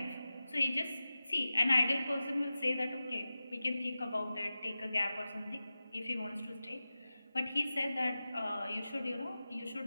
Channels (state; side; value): inverted; both; correlation -0.95